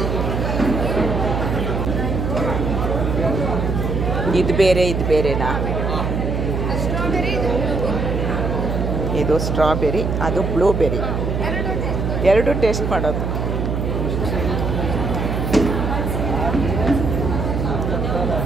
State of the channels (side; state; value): right; noise; hum, 1 dB below the sound